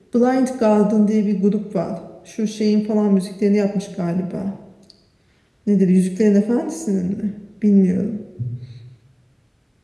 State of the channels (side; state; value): both; identical; correlation 1.00